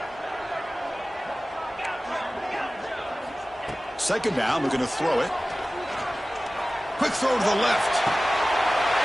Second down, looking to throw it. Quick throw to the left.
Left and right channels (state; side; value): normal; both; correlation 0.97